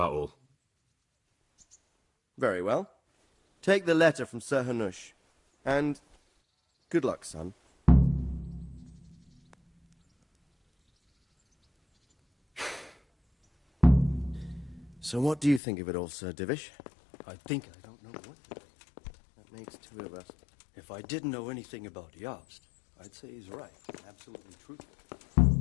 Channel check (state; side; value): drops out; right; at 15.6 s